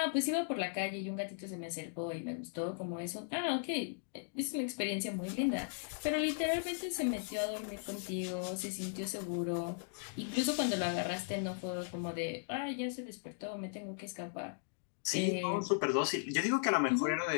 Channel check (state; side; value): silent; right; digital silence